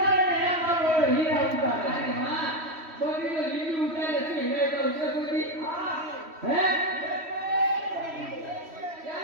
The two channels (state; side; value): late; left; 3.1 ms